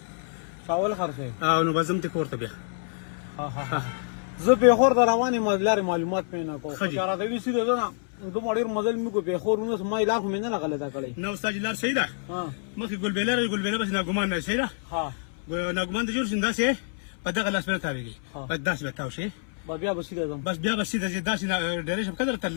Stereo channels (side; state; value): right; silent; 60 dB below the other